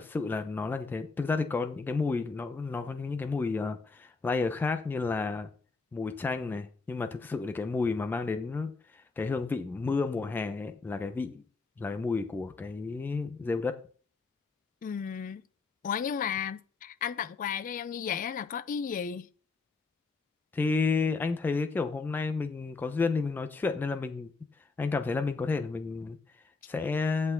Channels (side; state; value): right; quieter; 4.1 dB